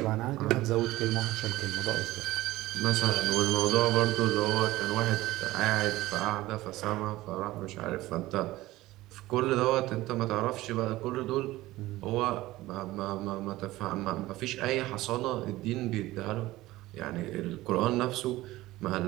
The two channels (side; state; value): left; quieter; 17.5 dB